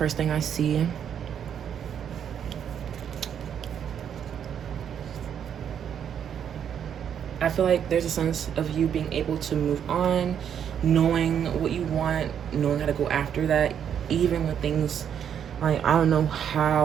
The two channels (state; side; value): quieter; left; 8.6 dB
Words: thing I see, I feel like there's a sense of you being able to move on, knowing what you want, knowing how to go after that, even with things like, I don't know